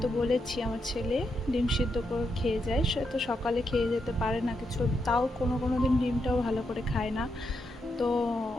তো বলেছি আমার ছেলে ডিম সিদ্ধ করে খেয়ে যায়, সে তো সকালে খেয়ে যেতে পারে না কিছু, তাও কোনো কোনো দিন ডিমটাও ভালো করে খায় না। তো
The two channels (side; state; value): both; normal; correlation 0.82